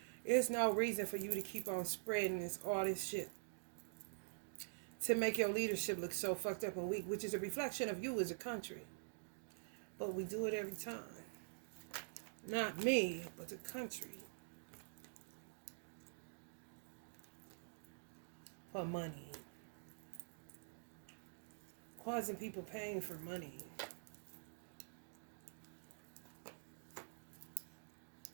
there's no reason for you to keep on spreading all this shit to make your leadership look so fucked up and weak, which is a reflection of you as a country. But we do it every time. Not me, but the country. For money. Causing people paying for money.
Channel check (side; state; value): left; silent; digital silence